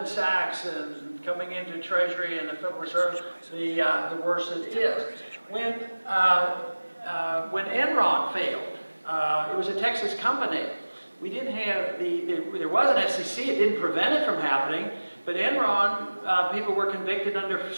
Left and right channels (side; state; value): both; inverted; correlation -1.00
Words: Sachs and coming into Treasury and the Federal Reserve, the worse it is. When Enron failed, it was a Texas company. We didn't have there was an SEC. It didn't prevent it from happening. But Enron, people were convicted under